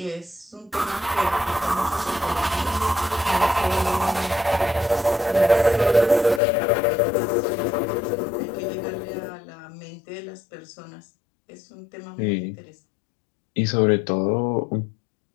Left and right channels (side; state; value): right; drops out; at 6.4 s